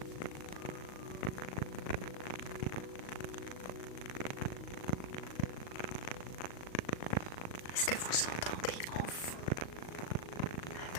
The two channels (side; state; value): right; late; 38 ms